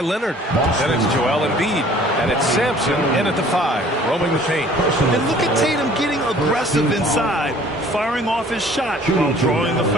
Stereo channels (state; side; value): normal; both; correlation 0.53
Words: Leonard. Then it's Joel Embiid. And it's Sampson in at the 5, roaming the paint. And look at Tatum getting aggressive inside, firing off his shot while drawing the